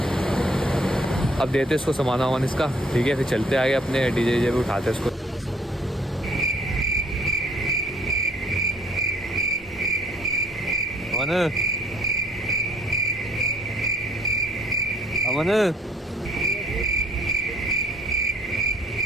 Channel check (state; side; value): normal; both; correlation 0.60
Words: अब देते इसको सामान वामान इसका, ठीक है, फिर चलते आगे अपने डीजे पे उठाते इसको। अमन अमन